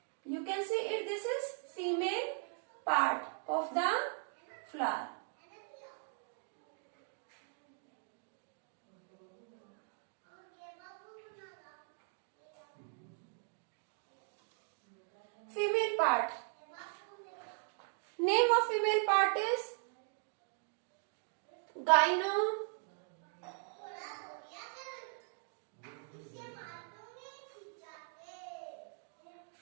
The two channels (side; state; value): left; silent; 51 dB below the other